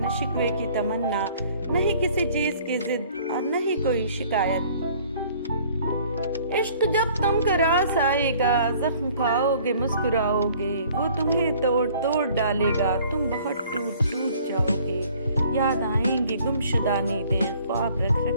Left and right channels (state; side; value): inverted; both; correlation -0.55